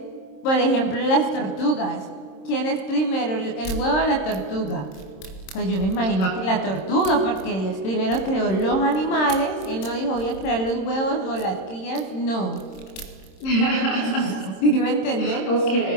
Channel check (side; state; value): right; late; 26 ms